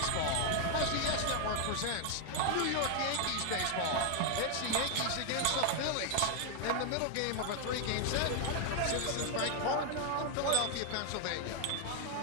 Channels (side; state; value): both; different; correlation 0.00